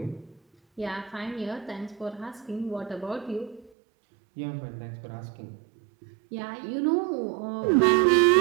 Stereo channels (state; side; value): drops out; left; at 3.7 s